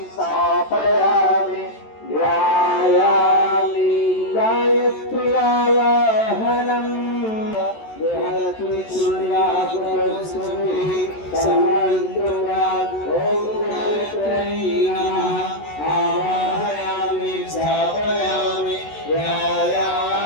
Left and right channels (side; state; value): right; late; 14 ms